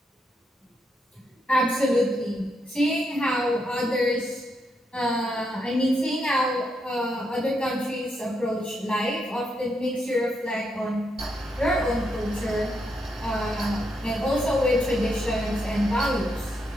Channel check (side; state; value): both; normal; correlation 0.80